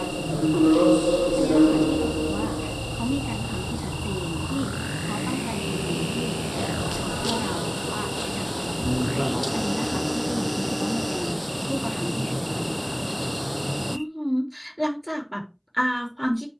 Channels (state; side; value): identical; both; correlation 1.00